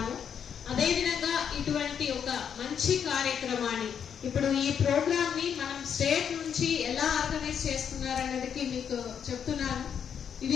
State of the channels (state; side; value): quieter; right; 7.9 dB